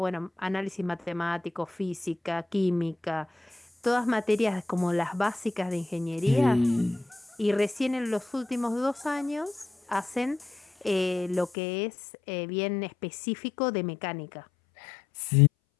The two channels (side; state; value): right; drops out; at 11.5 s